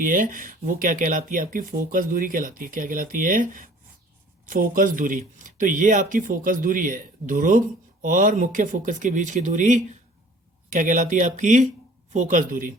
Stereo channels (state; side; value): normal; both; correlation 0.51